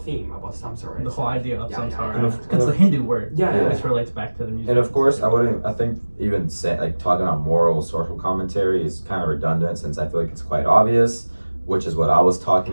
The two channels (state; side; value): inverted; both; correlation -1.00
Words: theme about Samsara. The whole idea of Samsara. And It's a Hindu word. Yeah. Which relates back to the music. And of course, I think even say, like talking about moral social commentary is kind of redundant, since I feel like it's quite obvious, which is what I was